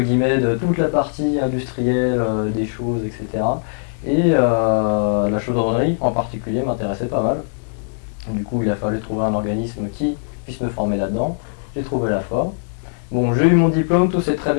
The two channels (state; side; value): silent; right; digital silence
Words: de toute la partie industrielle des choses, etc. Et la chaudronnerie en particulier m'intéressait pas mal. Du coup, il a fallu trouver un organisme qui puisse me former là-dedans. J'ai trouvé la FOR. Bon, j'ai eu mon diplôme, tout s'est très